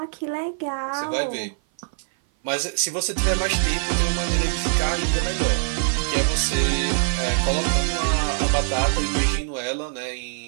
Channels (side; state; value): left; silent; 57 dB below the other